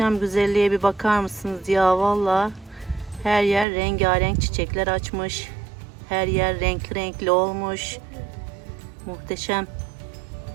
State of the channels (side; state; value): left; drops out; at 3.7 s